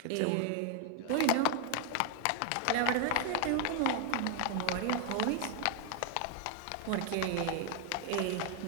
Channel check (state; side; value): different; both; correlation 0.00